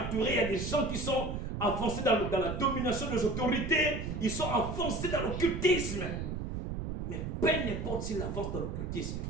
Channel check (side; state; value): right; noise; rumble, 4 dB below the sound